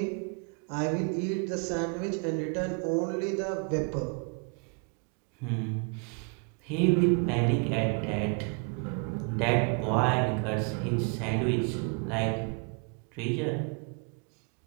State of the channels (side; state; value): left; quieter; 37.5 dB